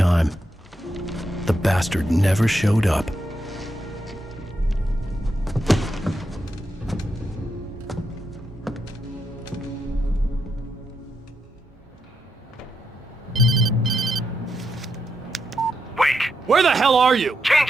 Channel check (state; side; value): normal; both; correlation 0.83